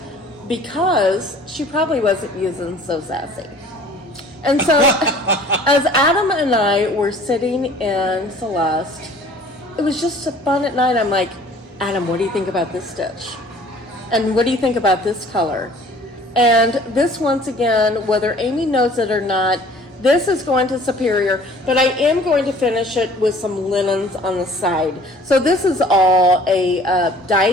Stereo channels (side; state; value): both; normal; correlation 0.51